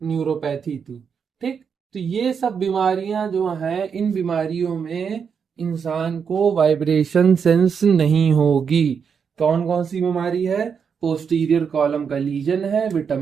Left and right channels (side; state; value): left; quieter; 6.6 dB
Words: न्यूरोपैथी थी, ठीक। तो ये सब बीमारियां जो हैं, इन बीमारियों में इंसान को वाइब्रेशन सेंस नहीं होगी। कौन कौन सी बीमारी है, पोस्टीरियर कॉलम का लीजन है,